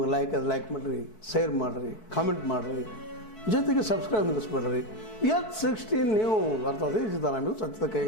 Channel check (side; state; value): right; late; 4.6 ms